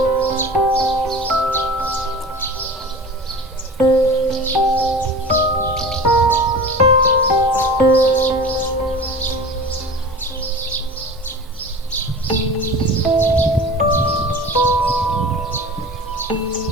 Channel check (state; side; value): normal; both; correlation 0.36